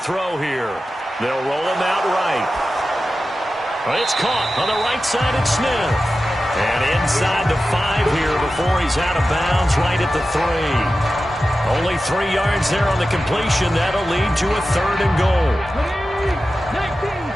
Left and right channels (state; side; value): normal; both; correlation 0.93